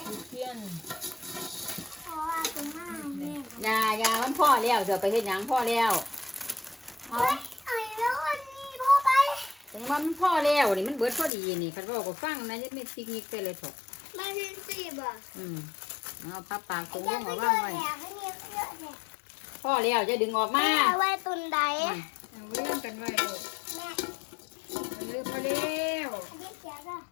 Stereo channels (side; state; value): right; drops out; at 11.3 s